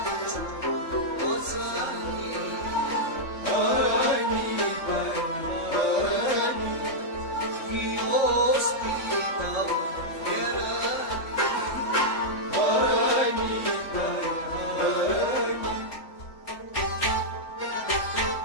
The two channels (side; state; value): right; late; 3.5 ms